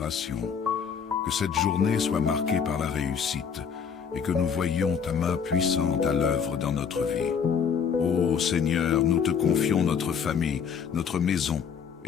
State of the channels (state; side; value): quieter; right; 6.8 dB